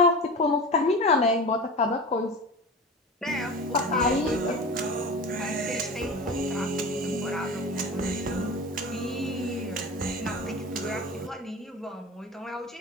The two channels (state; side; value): normal; both; correlation 0.32